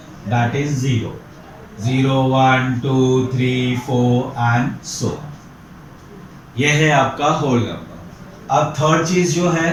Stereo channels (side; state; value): both; identical; correlation 1.00